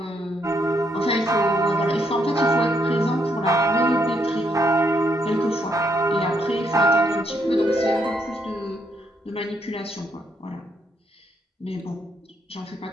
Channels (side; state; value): both; normal; correlation 0.74